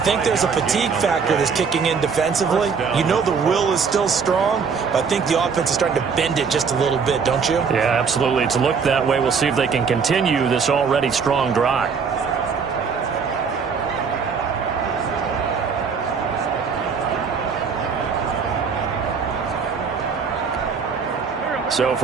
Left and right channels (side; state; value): left; quieter; 5.8 dB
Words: think there's a fatigue factor that's kicking in defensively. You know the will is still strong, but I think the offense is starting to bend it just a little bit, don't you? Yeah, absolutely. It's looked that way. We'll see if they can continue this already strong drive. So